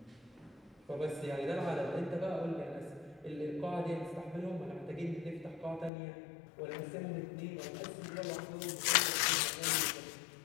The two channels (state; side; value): drops out; right; at 5.9 s